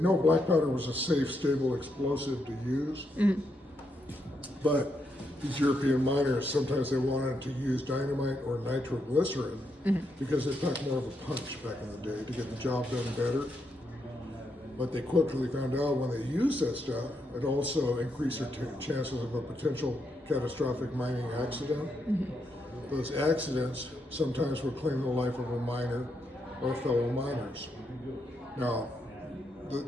black powder was a safe, stable explosive to use, but these European miners, sometimes they wanted to use dynamite or nitroglycerin because it packed more of a punch back in the day to get the job done better. But they quickly found out when they used that stuff, it also increased their chances of a potential catastrophic mining accident. Those accidents sometimes would claim the life of a miner or fellow miners. Now,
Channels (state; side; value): normal; both; correlation 0.80